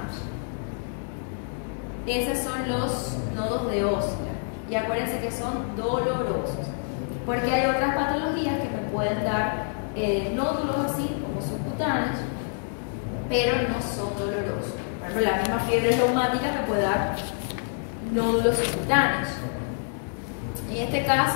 Esos son los nodos de Osler. Y acuérdense que son dolorosos. Porque hay otras patologías que me pueden dar nódulos así, como subcutáneos, pero no son dolorosos. Por ejemplo, la misma fiebre reumática me puede dar nódulos subcutáneos. En este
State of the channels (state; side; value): silent; right; digital silence